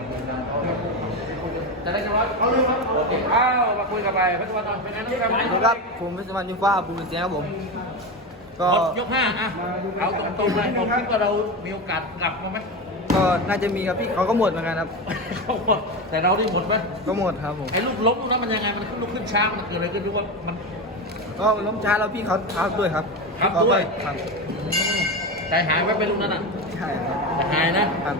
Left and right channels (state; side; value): normal; both; correlation 0.19